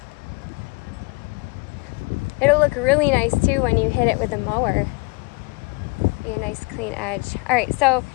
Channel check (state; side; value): quieter; right; 29.1 dB